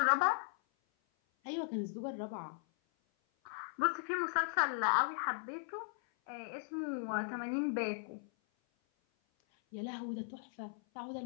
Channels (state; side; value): silent; right; 53 dB below the other